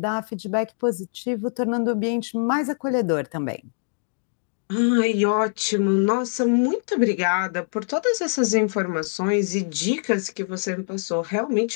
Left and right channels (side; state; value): right; silent; digital silence